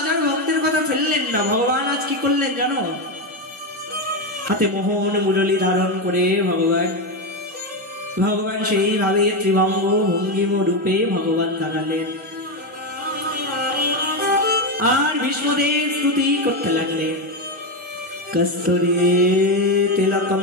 আর ভক্তের কথা ফেললেন না। ভগবান আজ কি করলেন জানো, হাতে মোহন মুরলী ধারণ করে ভগবান সেইভাবে ত্রিভঙ্গ ভঙ্গিম রূপে ভগবান দাঁড়ালেন, আর ভীষ্মদেব স্তুতি করতে লাগলেন। কস্তুরী তিলকম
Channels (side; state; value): both; normal; correlation 0.10